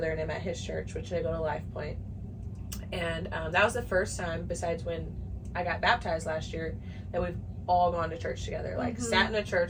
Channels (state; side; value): identical; both; correlation 1.00